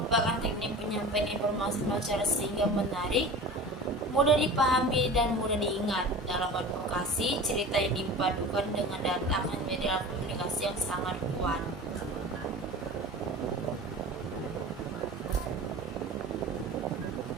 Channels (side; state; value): both; normal; correlation 0.36